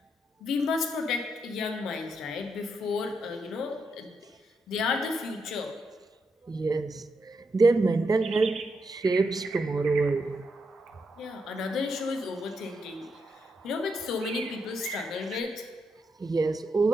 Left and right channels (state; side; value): normal; both; correlation 0.81